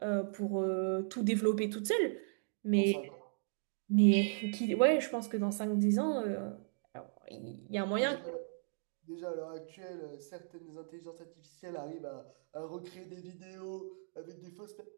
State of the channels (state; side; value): silent; left; digital silence